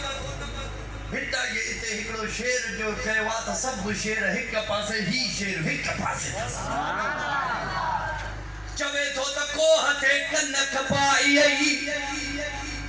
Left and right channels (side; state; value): both; identical; correlation 1.00